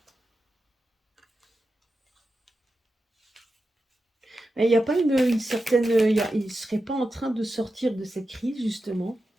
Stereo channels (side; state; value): both; normal; correlation 0.90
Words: Il n'y a pas une certaine... il ne serait pas en train de sortir de cette crise, justement.